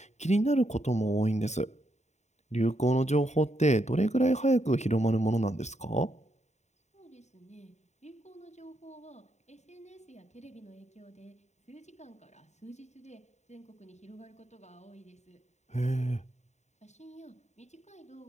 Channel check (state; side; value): late; right; 0.33 ms